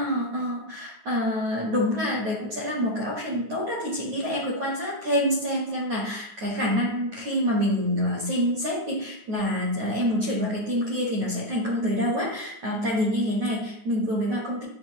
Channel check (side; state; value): left; late; 9.5 ms